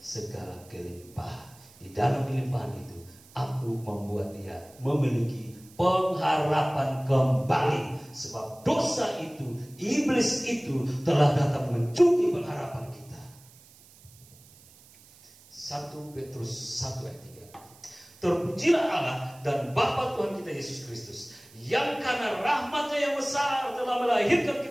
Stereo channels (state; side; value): noise; right; hiss, 25 dB below the sound